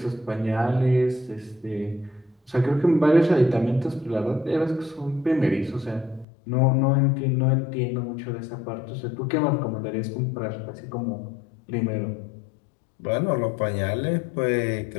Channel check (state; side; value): drops out; right; at 6.2 s